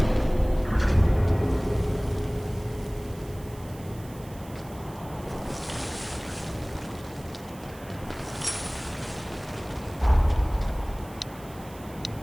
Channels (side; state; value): right; noise; hiss, 21 dB below the sound